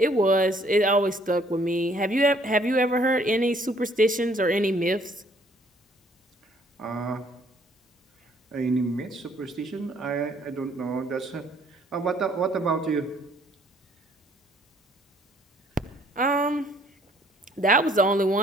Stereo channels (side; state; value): both; normal; correlation 0.62